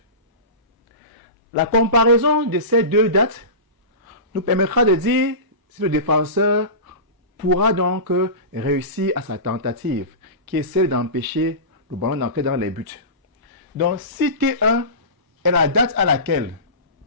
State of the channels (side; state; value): left; late; 1.0 ms